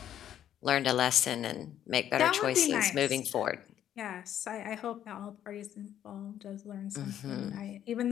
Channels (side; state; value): right; quieter; 10.7 dB